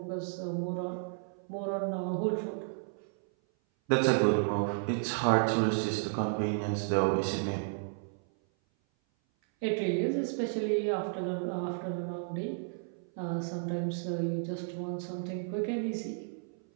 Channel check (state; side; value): silent; left; 56 dB below the other